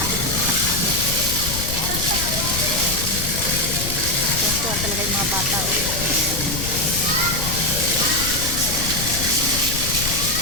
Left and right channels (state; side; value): noise; left; rumble, 6 dB below the sound